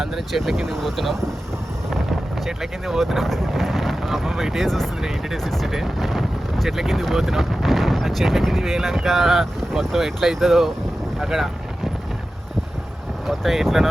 చెట్ల కిందకి పోతున్నాం. మా అమ్మమ్మ ఇటే చూస్తుంది, ఇంటిడే చూస్తుంటే చెట్ల కిందకి పోతున్నాం. ఆ చెట్ల కిందకి పోయినాక మొత్తం ఎట్లా అవుతుందో అక్కడ మొత్తం ఎట్లనో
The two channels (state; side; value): normal; both; correlation 0.94